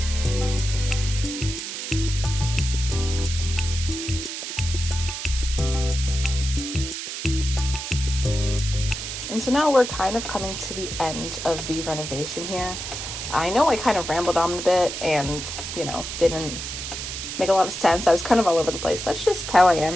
And so now we're kind of coming to the end of the renovation here. I know I kind of rambled on a bit and, didn't make a lot of sense. I was kind of all over the place. That's just how I am.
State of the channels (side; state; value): right; noise; hiss, 6 dB below the sound